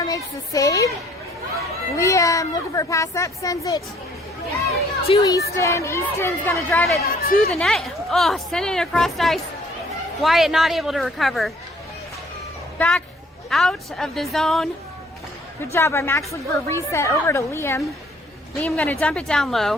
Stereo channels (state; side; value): normal; both; correlation 0.60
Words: makes the save. Liam looking for a pass up. Sends it to Easton. Easton's going to drive it to the net. Oh, sending it across ice. Wyatt not able to recover. Back out of the zone. Good job by Max, looking for a reset over to Liam. Liam going to dump it down